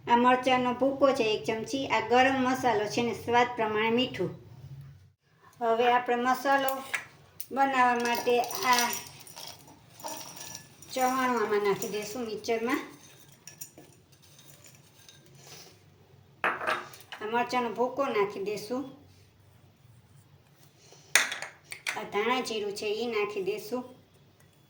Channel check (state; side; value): identical; both; correlation 1.00